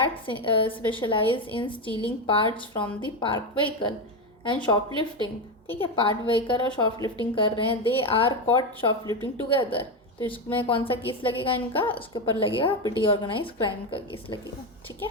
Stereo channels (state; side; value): normal; both; correlation 0.12